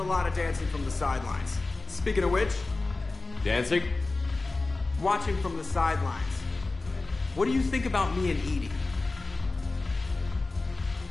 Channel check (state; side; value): quieter; right; 3.4 dB